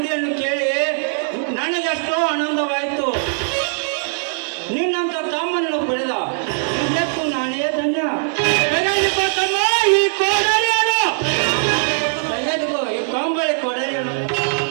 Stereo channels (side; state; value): left; silent; digital silence